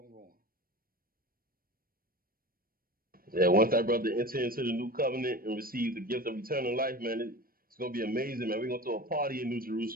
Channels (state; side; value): late; left; 0.42 ms